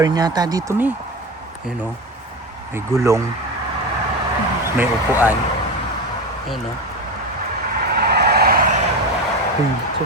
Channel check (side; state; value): both; normal; correlation 0.22